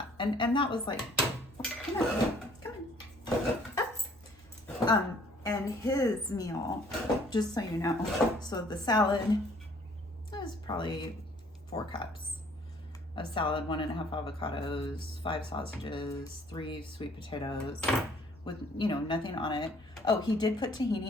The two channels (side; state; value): both; normal; correlation 0.58